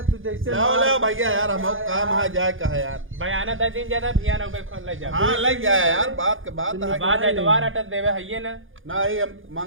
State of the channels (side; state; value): left; late; 0.58 ms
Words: तू जैसे लाओ लाओ भैया यार हम काम है जाए कहा यार। बयाना 10 दिन ज्यादा भिया ना उबे खोल ले जा। हाँ लग जाए यार बात के बात है। बाद है दोबारा अटक देवे है ना। ना ही हम